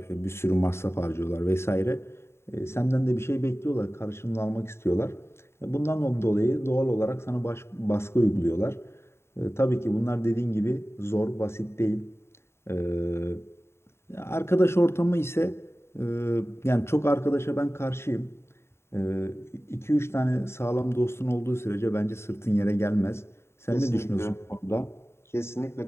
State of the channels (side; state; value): right; late; 0.12 ms